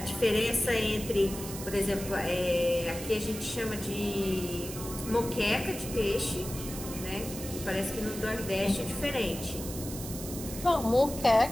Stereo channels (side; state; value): right; noise; hiss, 10 dB below the sound